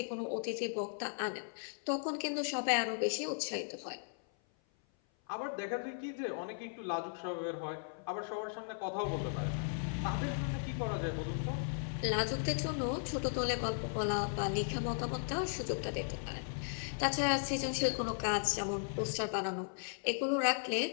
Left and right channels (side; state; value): right; silent; 53 dB below the other